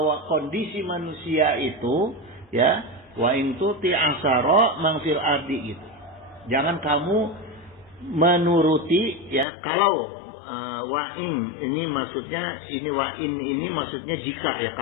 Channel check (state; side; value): drops out; right; at 9.5 s